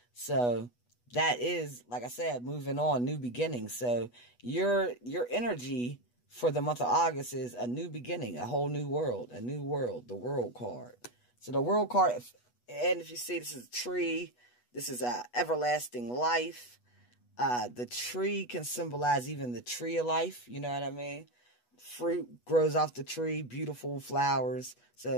So that is, like I said, moving on, new beginnings. So your energy for the month of August is a new beginning, a whole new world, the world card. So the world card, and if you see, this is a tree. This is everlasting life. The tree can symbolize even the tree of life. You know what I mean? Fruit grows off the tree, beautiful flowers.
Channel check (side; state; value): right; late; 8.2 ms